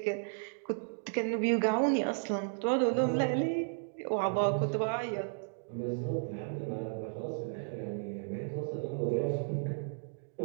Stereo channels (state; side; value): silent; left; digital silence